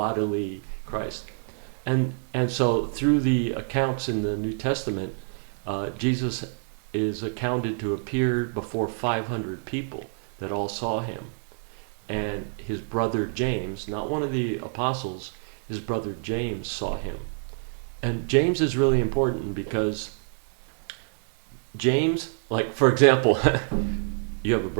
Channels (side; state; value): left; silent; 60 dB below the other